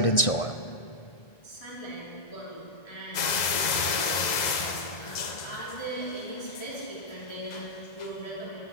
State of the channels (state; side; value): late; right; 2.0 ms